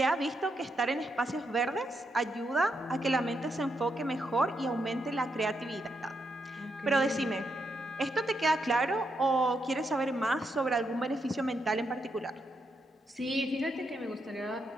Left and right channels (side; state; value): both; normal; correlation 0.81